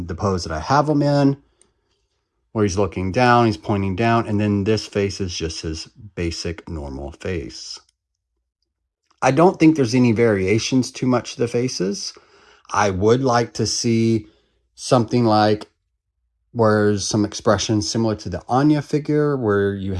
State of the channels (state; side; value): identical; both; correlation 1.00